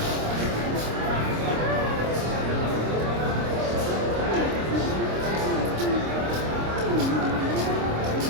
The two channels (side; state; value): left; late; 26 ms